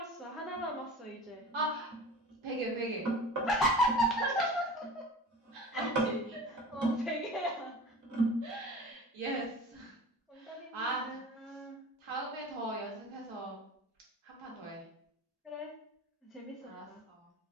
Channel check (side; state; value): both; normal; correlation 0.38